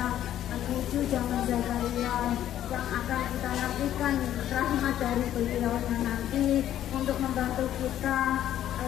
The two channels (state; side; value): quieter; right; 11.7 dB